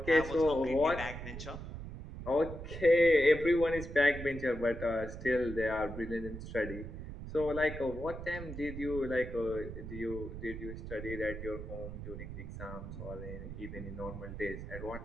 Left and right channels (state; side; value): noise; right; rumble, 9 dB below the sound